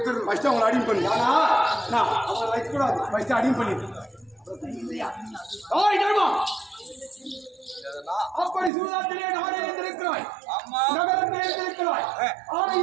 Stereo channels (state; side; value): drops out; left; at 8.7 s